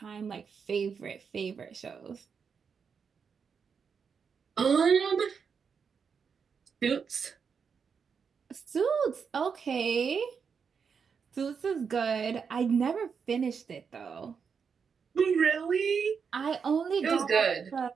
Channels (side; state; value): left; quieter; 6.2 dB